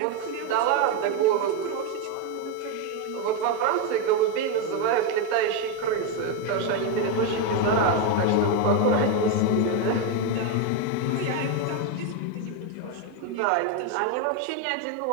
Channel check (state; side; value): different; both; correlation 0.03